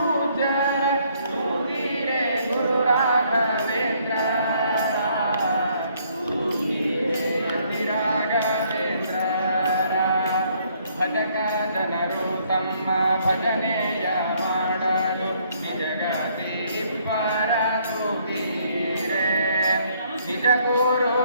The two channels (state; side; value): inverted; both; correlation -0.67